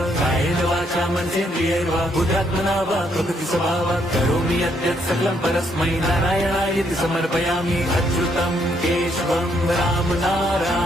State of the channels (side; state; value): both; normal; correlation 0.72